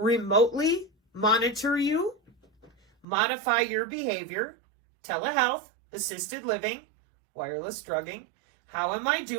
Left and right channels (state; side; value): drops out; left; at 3.1 s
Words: monitor you, modify your behavior, Telehealth, assisted living, wireless drugging. How am I